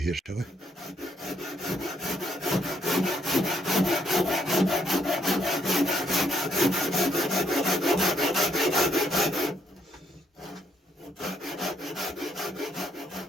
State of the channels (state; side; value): normal; both; correlation 0.72